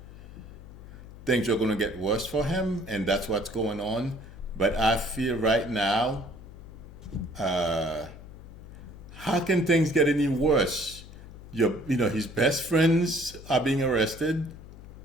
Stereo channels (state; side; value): noise; left; hum, 16 dB below the sound